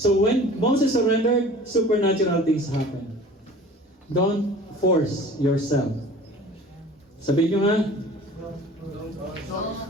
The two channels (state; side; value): normal; both; correlation 0.44